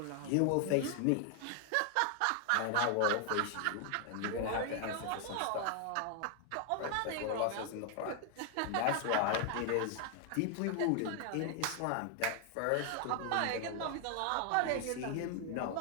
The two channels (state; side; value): different; both; correlation 0.00